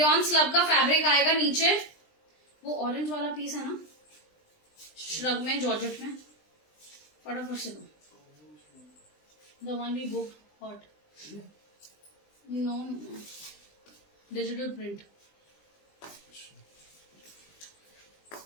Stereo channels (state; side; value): late; right; 20 ms